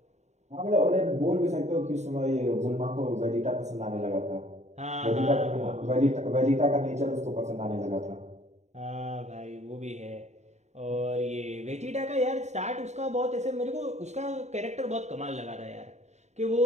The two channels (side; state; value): left; late; 0.33 ms